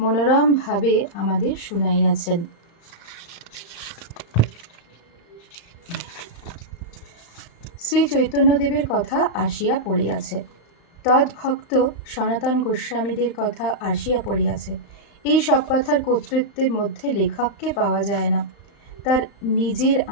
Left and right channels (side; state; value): right; late; 35 ms